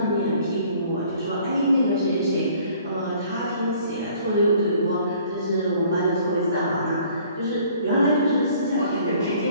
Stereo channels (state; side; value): inverted; both; correlation -0.56